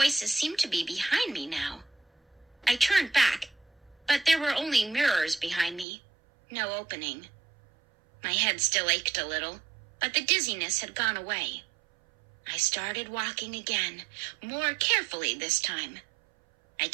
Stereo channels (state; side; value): drops out; left; at 5.9 s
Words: seemed to be behind me now. I turned back, but there were only mirrors behind me, no opening. My head still ached a little, but the dizziness had gone away. I started walking again, more carefully this time. I